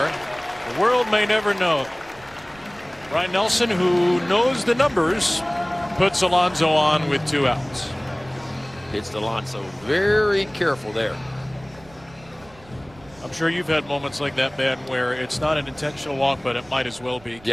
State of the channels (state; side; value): noise; right; rumble, 24 dB below the sound